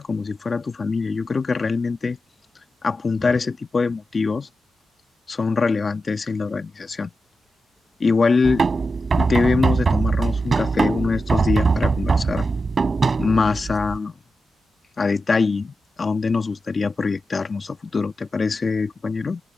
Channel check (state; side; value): normal; both; correlation 0.90